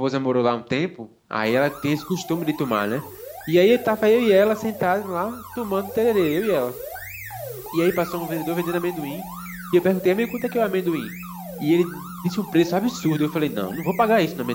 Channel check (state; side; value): identical; both; correlation 1.00